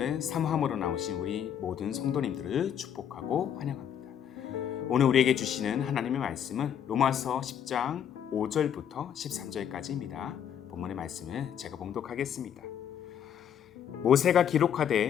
사모함으로 나오신 우리 모든 성도님들을 축복하고 환영합니다. 오늘 우리에게 주시는 하나님의 말씀은 로마서 10장 5절부터 13절까지입니다. 본문의 말씀을 제가 봉독하겠습니다. 모세가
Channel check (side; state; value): right; quieter; 9.0 dB